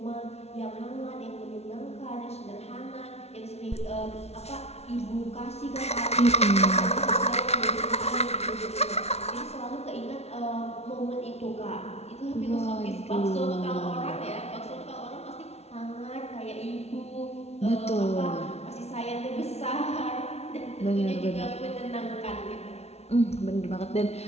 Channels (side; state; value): right; late; 0.31 ms